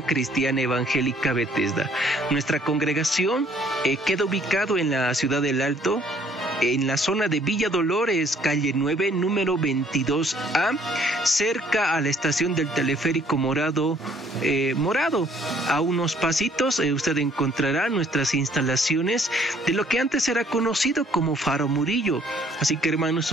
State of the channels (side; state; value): both; normal; correlation 0.61